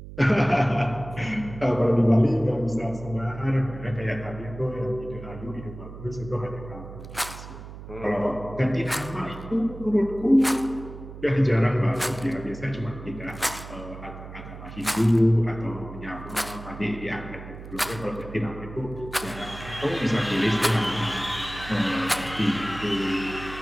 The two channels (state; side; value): noise; right; hum, 13 dB below the sound